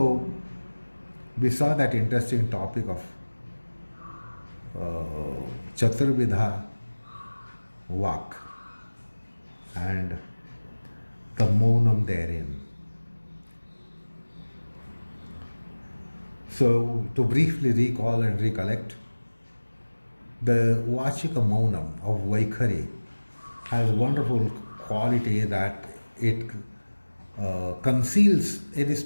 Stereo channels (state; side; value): inverted; both; correlation -1.00